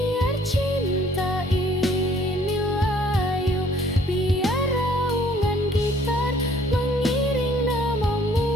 cinta ini layu. Biar raungan gitar mengiring namamu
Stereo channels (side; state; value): both; normal; correlation 0.59